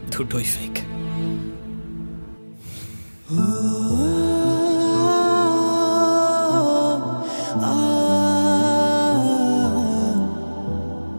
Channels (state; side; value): inverted; both; correlation -1.00